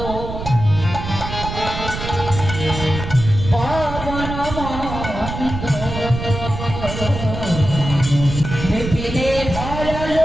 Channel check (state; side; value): noise; right; rumble, 7 dB below the sound